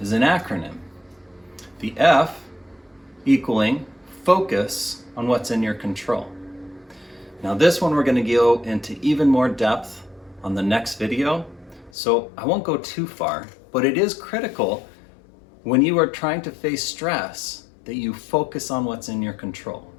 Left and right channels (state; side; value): drops out; right; at 11.9 s